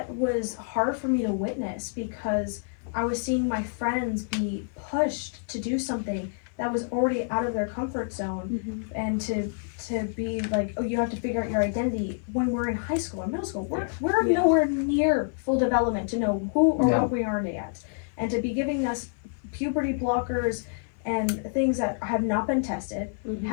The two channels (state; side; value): silent; right; 60 dB below the other